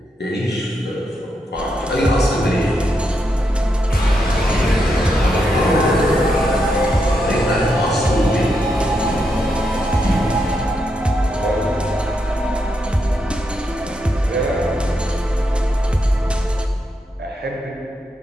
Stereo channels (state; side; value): normal; both; correlation 0.82